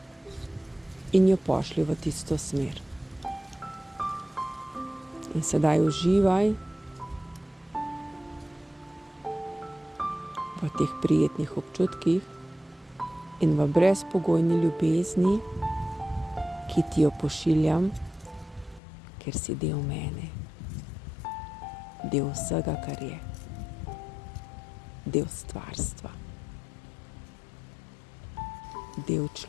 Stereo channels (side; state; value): right; drops out; at 18.8 s